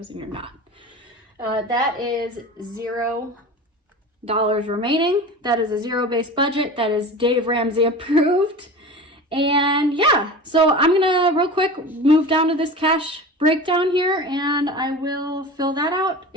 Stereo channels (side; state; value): both; normal; correlation 0.33